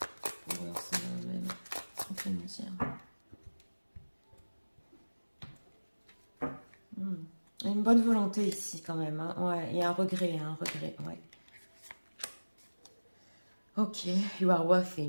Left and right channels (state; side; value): inverted; both; correlation -1.00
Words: Pour même, on peut nous dire. Une bonne volonté ici quand même. Hein. Ouais, il y a un regret, ouais. Ok, you are worthy.